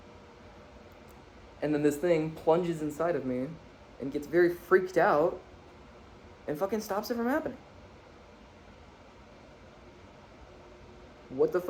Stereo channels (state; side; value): identical; both; correlation 1.00